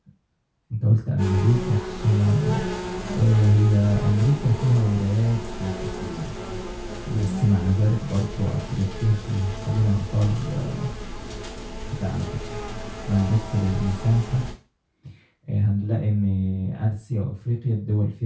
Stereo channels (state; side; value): identical; both; correlation 1.00